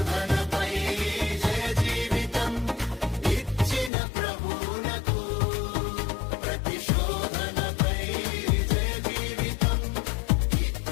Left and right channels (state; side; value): drops out; right; at 3.9 s